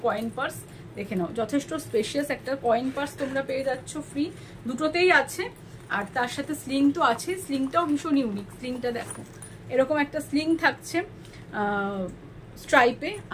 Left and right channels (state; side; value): identical; both; correlation 1.00